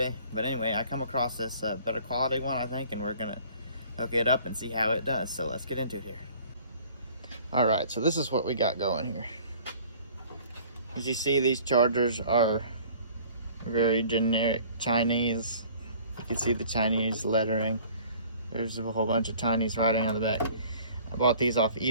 But anyway, I come across this better quality one, I think, and we're going to hook it up and see how it does. So let's get into it here. Alright, so this is what we got going here. As you see, these chargers are very generic Chinese. You can see the Chinese lettering. There's a whole bunch of Chinese writing on the back. I bought these off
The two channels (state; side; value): inverted; both; correlation -0.51